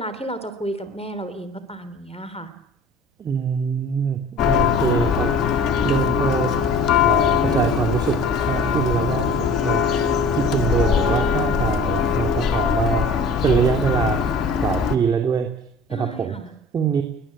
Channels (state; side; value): normal; both; correlation 0.44